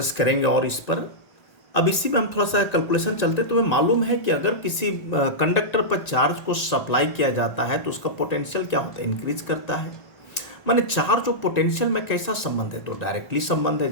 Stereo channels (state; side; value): late; right; 1.9 ms